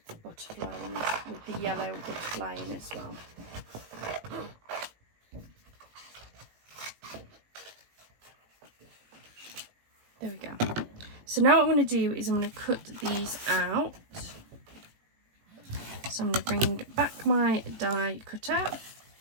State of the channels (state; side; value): late; left; 18 ms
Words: the butterfly in, with the yellow butterfly in as well. There we go. So now what I'm going to do is I'm going to cut these out. So I'm going to bring back my die cutter.